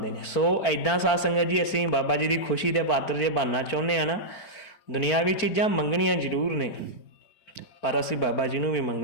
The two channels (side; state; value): right; late; 4.4 ms